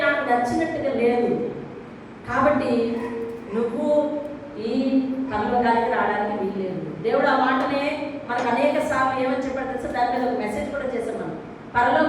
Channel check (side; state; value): both; identical; correlation 1.00